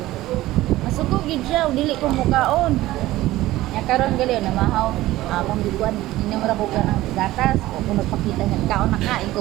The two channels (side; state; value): left; quieter; 16.5 dB